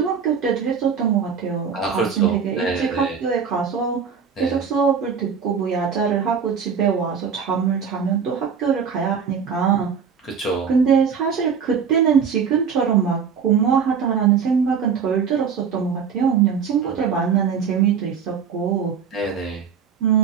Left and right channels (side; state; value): left; quieter; 6.6 dB